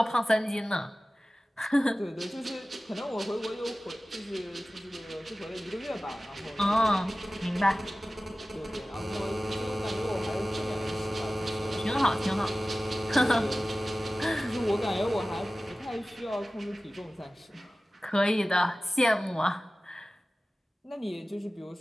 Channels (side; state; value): both; normal; correlation 0.97